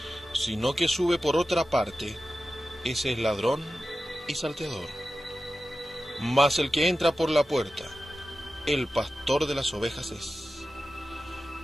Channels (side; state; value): both; normal; correlation 0.94